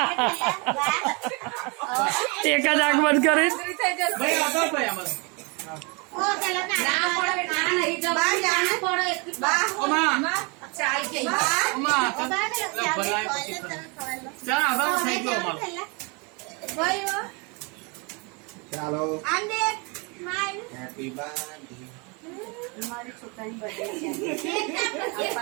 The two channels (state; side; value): quieter; left; 30.9 dB